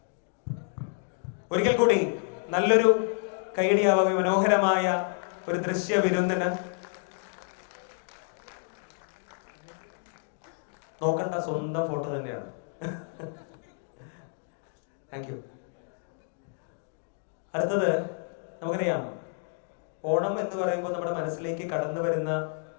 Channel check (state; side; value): silent; right; 58 dB below the other